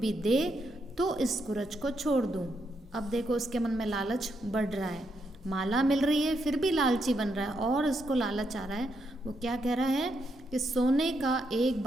दे तो इस कुरज को छोड़ दूं। अब देखो उसके मन में लालच बढ़ रहा है, माला मिल रही है फिर भी लालची बन रहा है और उसको लालच आ रहा है। वो क्या कह रहा है कि सोने का एक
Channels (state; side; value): normal; both; correlation 0.80